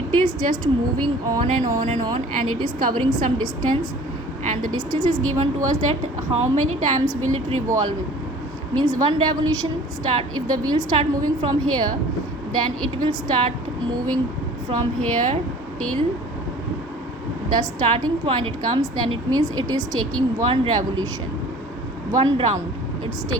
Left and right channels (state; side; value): normal; both; correlation 0.47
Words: is just moving on and on and on, and it is covering some distance, and the distance is given to us. That how many times will it revolve means one revolution start. If the wheel start moving from here, then it will start moving from here till the starting point it comes. Then it means it is taking one revolution, one round. It's